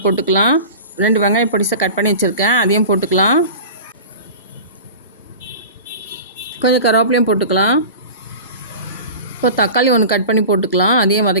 போட்டுக்கலாம். 2 வெங்காயம் பொடிசாக கட் பண்ணி வச்சுருக்கேன், அதையும் போட்டுக்கலாம். கொஞ்சம் கருவேப்பிலையும் போட்டுக்கலாம். இப்போ தக்காளி 1 கட் பண்ணி போட்டுக்கலாம், அதையும்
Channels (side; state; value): both; inverted; correlation -0.35